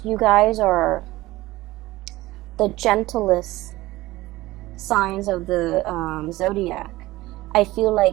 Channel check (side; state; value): left; quieter; 18.3 dB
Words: you guys are the gentlest signs of the zodiac. I feel